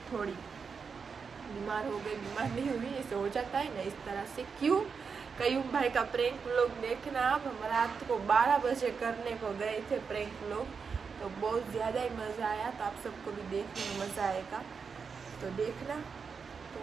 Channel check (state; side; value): quieter; left; 5.6 dB